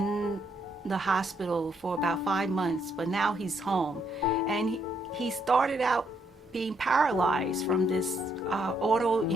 the hospital for about 5 months, but now he's home, and he started out being paralyzed from this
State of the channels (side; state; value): both; normal; correlation 0.73